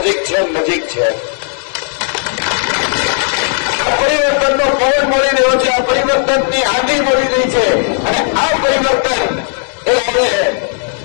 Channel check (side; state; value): right; silent; 59 dB below the other